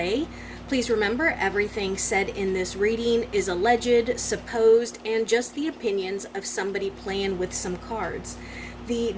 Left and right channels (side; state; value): both; identical; correlation 1.00